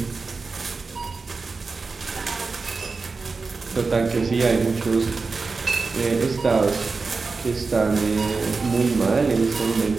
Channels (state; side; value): quieter; left; 4.3 dB